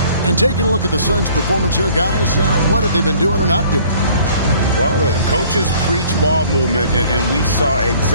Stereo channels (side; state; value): both; inverted; correlation -0.55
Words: And taking a look at the Suns' performance here, guys, what have they been doing or not doing? Well, the coaches preach ball movement, and we saw